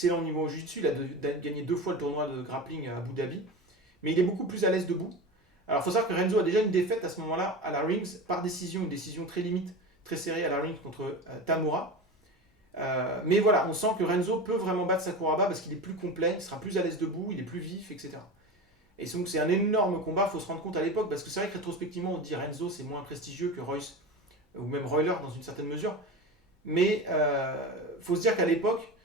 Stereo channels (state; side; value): normal; both; correlation 0.27